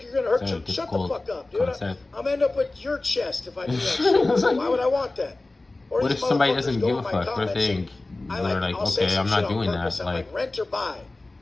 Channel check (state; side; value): quieter; right; 3.0 dB